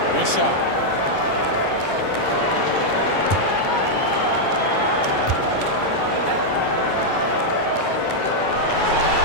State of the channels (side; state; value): right; late; 9.9 ms